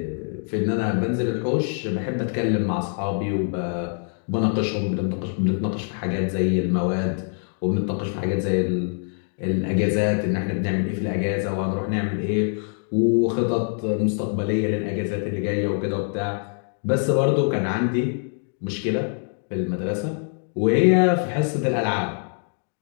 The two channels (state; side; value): silent; right; 57 dB below the other